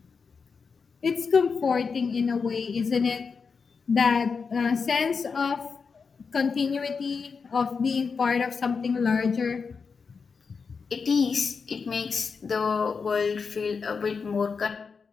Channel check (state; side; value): quieter; right; 5.3 dB